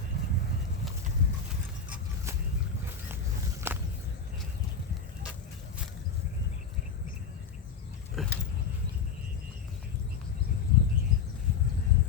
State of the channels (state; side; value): quieter; right; 5.7 dB